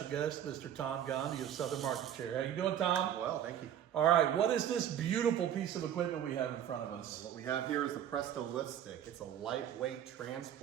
guest, Mr. Tom Gandhi of Southern Market Chair. How you doing, Tom? Well, thank you. All right, what is this beautiful piece of equipment we have in front of us? What we have here is the Presto LiftStik. It's a lightweight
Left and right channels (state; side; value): quieter; left; 10.2 dB